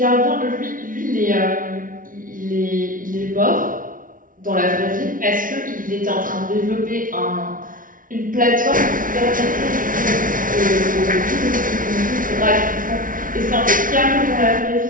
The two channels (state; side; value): late; left; 0.39 ms